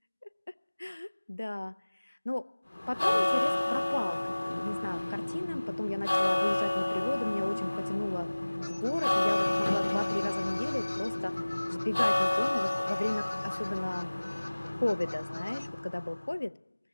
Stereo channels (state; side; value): inverted; both; correlation -1.00